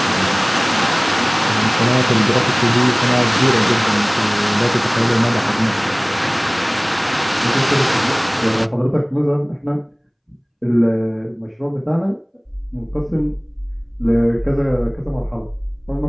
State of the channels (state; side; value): identical; both; correlation 1.00